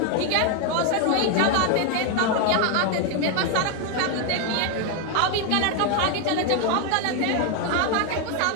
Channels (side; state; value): both; different; correlation 0.01